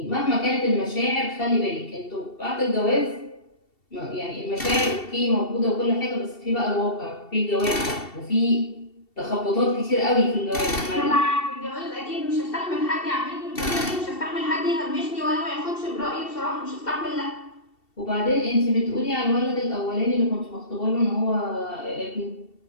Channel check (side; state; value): right; late; 2.7 ms